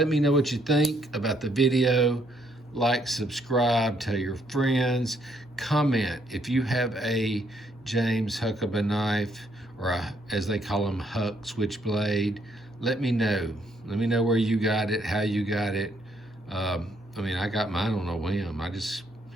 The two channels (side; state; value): both; normal; correlation 0.71